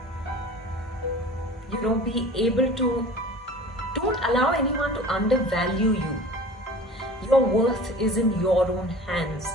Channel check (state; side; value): normal; both; correlation 0.41